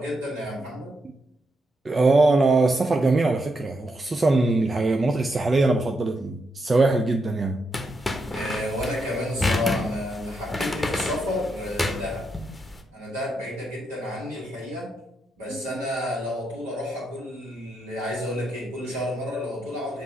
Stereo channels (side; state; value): both; normal; correlation 0.82